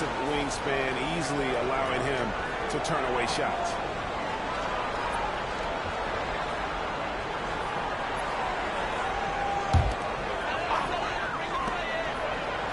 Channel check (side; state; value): both; identical; correlation 1.00